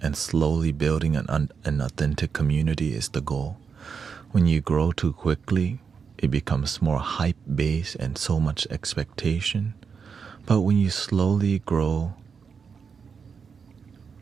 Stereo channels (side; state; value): left; quieter; 6.0 dB